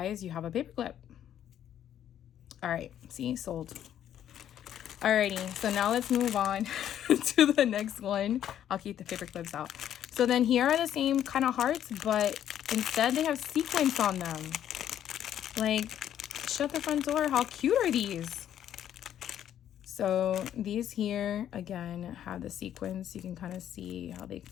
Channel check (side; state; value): right; quieter; 10.5 dB